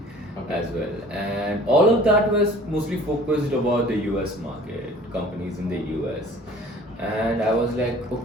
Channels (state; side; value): normal; both; correlation 0.48